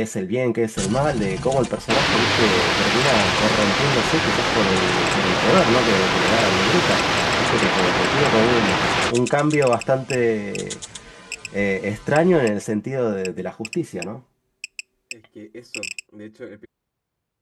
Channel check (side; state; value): both; identical; correlation 1.00